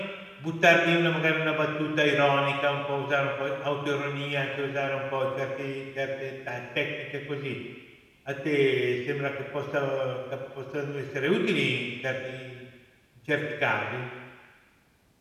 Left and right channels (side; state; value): both; identical; correlation 1.00